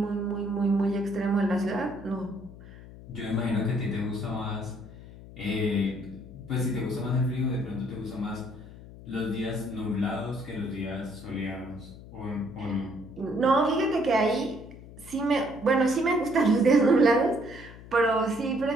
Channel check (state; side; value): noise; left; hum, 17 dB below the sound